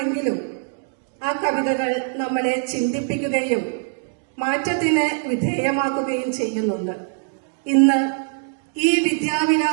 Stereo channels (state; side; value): silent; left; digital silence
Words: ആ കവിതകൾ നമ്മളെ ചിന്തിപ്പിക്കുകയും മാറ്റത്തിന് വിധേയമാക്കുകയും ചെയ്യുന്നുണ്ട്. ഇന്ന് ഈ